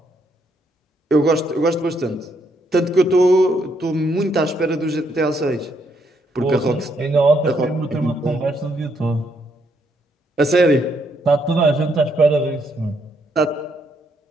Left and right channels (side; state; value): both; normal; correlation 0.74